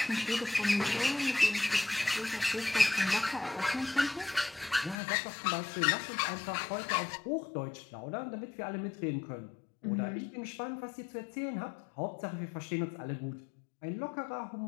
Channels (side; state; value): right; drops out; at 5.0 s